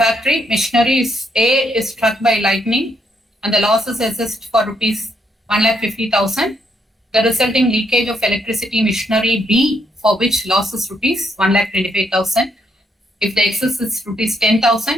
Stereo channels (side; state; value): both; normal; correlation 0.75